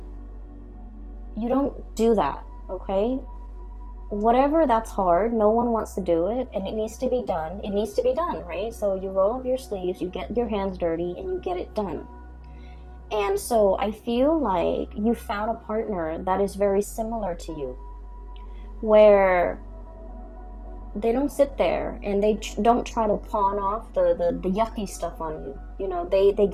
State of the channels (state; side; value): identical; both; correlation 1.00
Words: you don't do that, okay? Whatever that's hard, no one wants to do it, and it needs to be done. It needs to be done, right? So you roll up your sleeves, you get your hands dirty, and you get it done. And so I feel like you found a partner that is very similar to you, where they don't sit there and they don't try to pawn off the yucky stuff on you. They